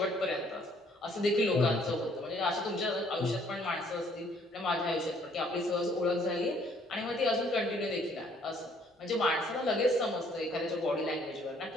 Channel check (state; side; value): normal; both; correlation 0.63